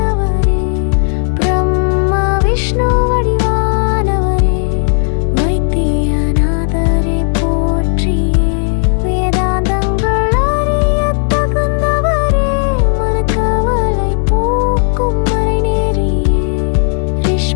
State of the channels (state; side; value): silent; right; digital silence